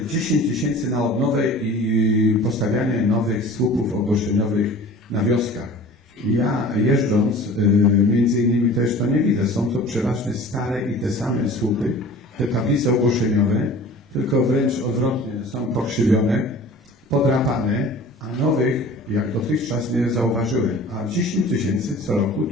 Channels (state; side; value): normal; both; correlation 0.42